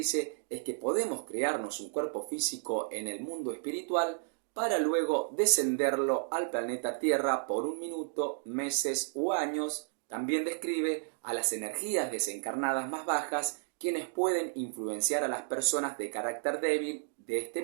es que podemos crearnos un cuerpo físico en el mundo espiritual para luego descenderlo al planeta Tierra por un minuto, meses u años. También describe a las energías desencarnadas más bajas, quienes pueden influenciar a las personas de carácter débil de este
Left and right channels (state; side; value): silent; left; digital silence